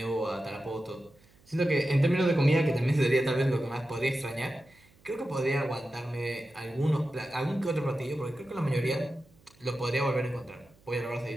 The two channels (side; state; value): right; noise; hum, 30 dB below the sound